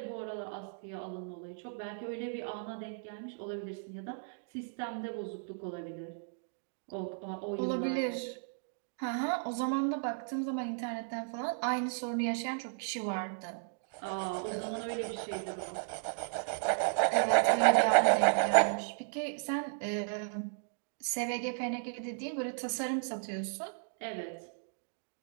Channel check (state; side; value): silent; left; digital silence